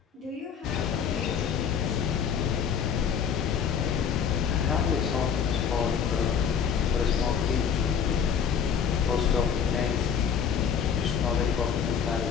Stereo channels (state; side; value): quieter; right; 7.4 dB